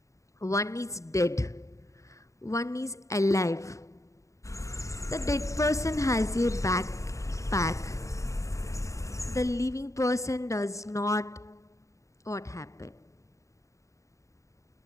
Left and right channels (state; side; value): late; right; 0.15 ms